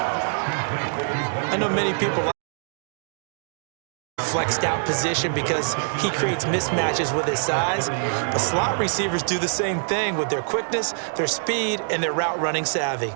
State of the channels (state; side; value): silent; left; digital silence